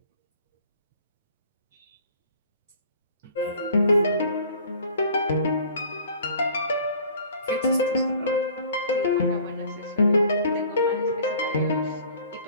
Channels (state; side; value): inverted; both; correlation -0.50